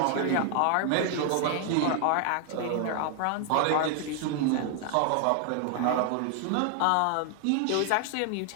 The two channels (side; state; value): both; different; correlation 0.00